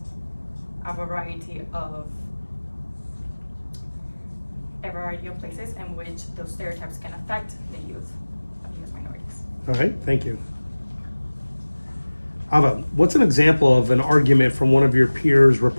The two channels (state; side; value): inverted; both; correlation -1.00